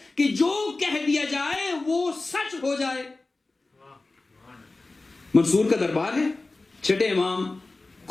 کہ جو کہہ دیا جائے وہ سچ ہو جائے. منصور کا دربار ہے, چھٹے امام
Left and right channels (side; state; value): right; quieter; 3.3 dB